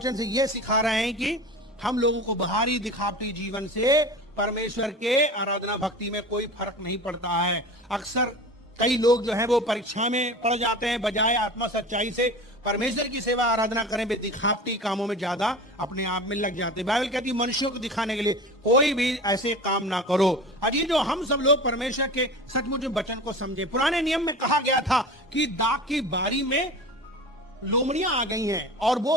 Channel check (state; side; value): normal; both; correlation 0.34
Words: से यह सिखा रहे हैं कि हम लोगों को बाहरी दिखावटी जीवन से परमेश्वर के आराधना भक्ति में कोई फर्क नहीं पड़ता है। अक्सर कई लोग जो है वो परीक्षा में पड़ जाते हैं, बजाय आत्मा सच्चाई से परमेश्वर की सेवा आराधना करें, वे दिखावटी कामों में ज्यादा अपने आप में लग जाते हैं। बाइबल कहती है मनुष्यों को दिखाने के लिए कोई भी ऐसे काम ना करो। अजी जो हम सब लोग परमेश्वर के सचमुच वचन को समझे। पुराने नियम में कहा गया था कि दाख की बारी में लोमड़ियां आ गई हैं और